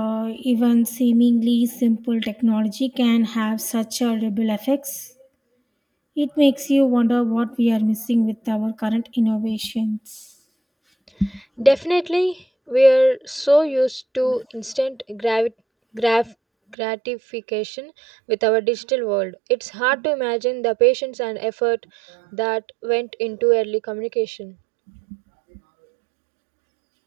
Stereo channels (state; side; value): drops out; left; at 16.8 s